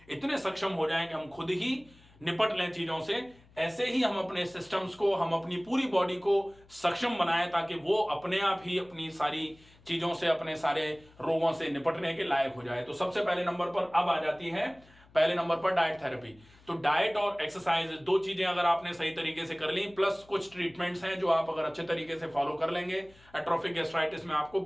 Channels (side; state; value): left; noise; hum, 27 dB below the sound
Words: इतने सक्षम हो जाएं कि हम खुद ही निपट लें चीजों से। ऐसे ही हम अपने सिस्टम्स को, हम अपनी पूरी बॉडी को सक्षम बनाएं ताकि वो अपने आप ही अपनी सारी चीजों से, अपने सारे रोगों से निपटने के लायक हो जाए। तो सबसे पहले नंबर पर अब आ जाती है, पहले नंबर पर डाइट थेरेपी। तो डाइट और एक्सरसाइज, दो चीजें अगर आपने सही तरीके से कर ली, प्लस कुछ ट्रीटमेंट्स हैं जो आप अगर अच्छे तरीके से फॉलो कर लेंगे, एट्रोफिक गैस्ट्राइटिस में आपको